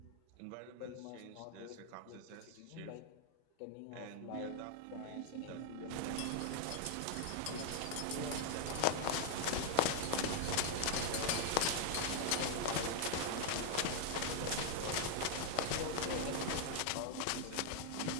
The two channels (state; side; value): different; both; correlation 0.00